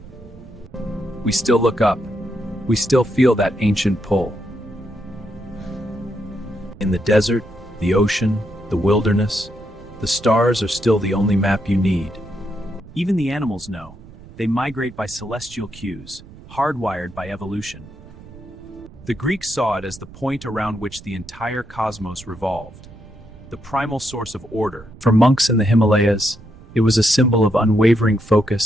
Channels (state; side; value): noise; right; rumble, 19 dB below the sound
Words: We still look up. We still feel that ancient pull. In the desert, the ocean, the wilderness, the stars are still the only map you need. Even the animals know. They migrate by celestial cues, hardwired by evolution. The Greeks saw it as the point around which the entire cosmos revolved, the primal source of order. For monks in the Himalayas, it was a symbol of unwavering